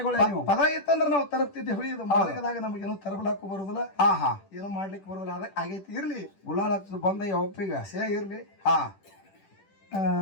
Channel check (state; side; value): late; right; 10 ms